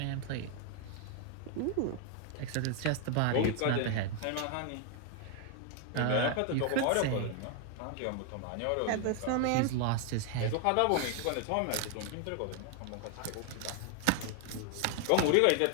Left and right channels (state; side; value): different; both; correlation 0.00